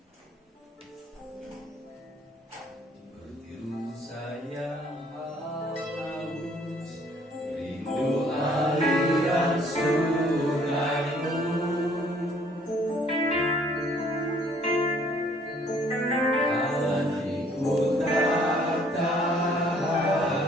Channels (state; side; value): normal; both; correlation 0.61